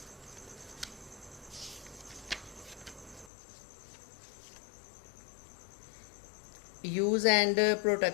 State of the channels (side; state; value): right; drops out; at 3.3 s